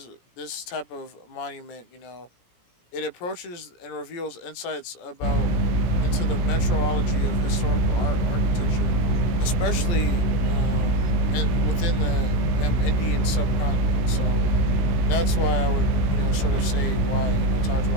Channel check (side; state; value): right; late; 17 ms